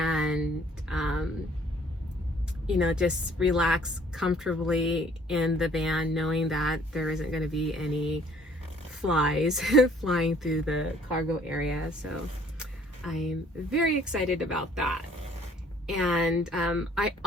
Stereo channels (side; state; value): both; normal; correlation 0.58